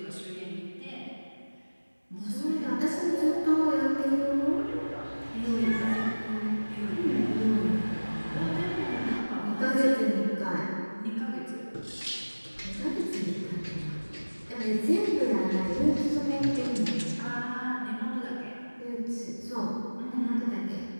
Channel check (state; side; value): inverted; both; correlation -1.00